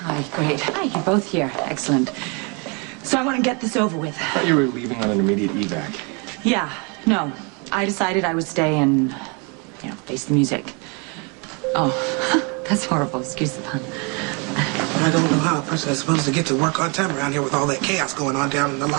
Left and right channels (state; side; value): quieter; left; 32.5 dB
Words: great. Hi, you're both here. Excellent. So I want to get this over with. I thought you were leaving on an immediate evac. Yeah, no. I decided I would stay and, you know, face the music. Oh, that's horrible. Excuse the pun. I don't know how a person is supposed to get to work on time around here with all that chaos going on down in the